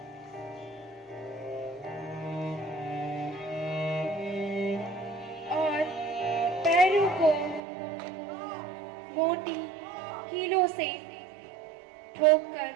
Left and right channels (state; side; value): drops out; left; at 7.6 s